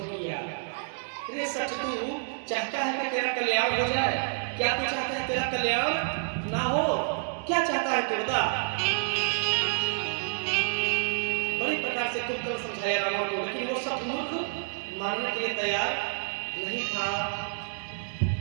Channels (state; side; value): silent; left; digital silence